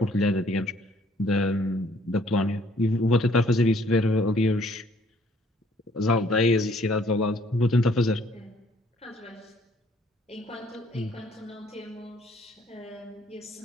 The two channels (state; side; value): normal; both; correlation 0.61